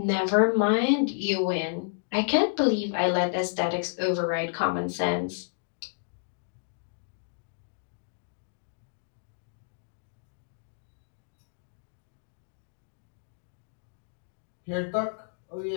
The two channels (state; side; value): silent; right; digital silence